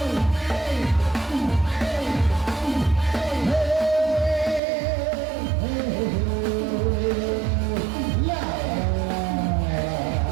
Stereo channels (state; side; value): drops out; left; at 4.6 s